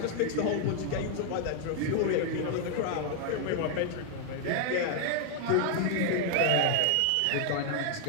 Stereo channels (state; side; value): different; both; correlation 0.00